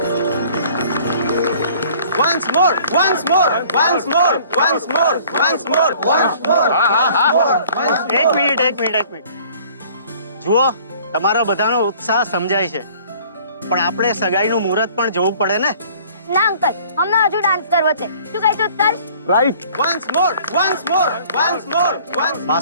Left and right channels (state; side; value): inverted; both; correlation -0.53